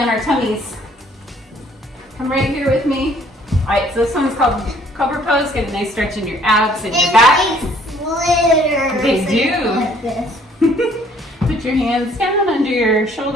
our tummies. Come right here with me. All right, so this one's called cobra pose. Get a nice stretch in your abs and your back. Slithers. They do. Like this. Put your hands down under your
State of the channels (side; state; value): both; normal; correlation 0.60